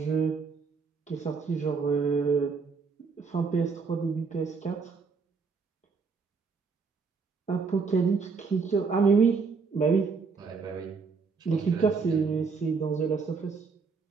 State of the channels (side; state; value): left; quieter; 5.0 dB